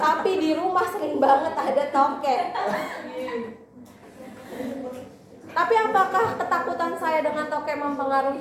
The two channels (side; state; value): both; identical; correlation 1.00